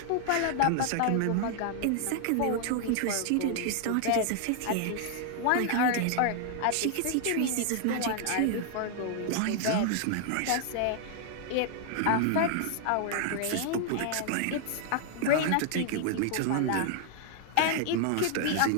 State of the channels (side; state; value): both; different; correlation 0.00